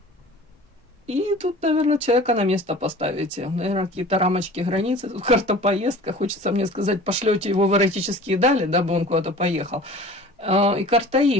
И тут, наверное, человека на место поставите. Наверное, какие-то рамочки, границы. Тут карта поездка. Хочется мне сказать, пошлете его в эротические дали, дабы он куда-то поехал. И карта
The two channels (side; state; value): both; normal; correlation 0.42